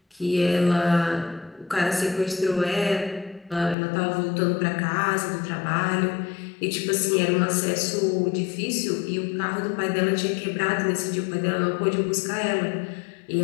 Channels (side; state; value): right; drops out; at 3.8 s